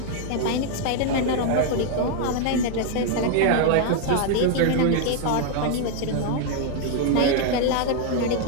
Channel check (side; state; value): both; different; correlation 0.00